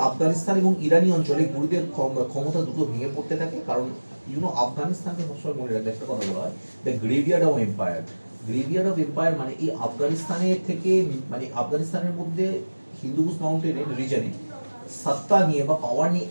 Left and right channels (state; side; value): inverted; both; correlation -1.00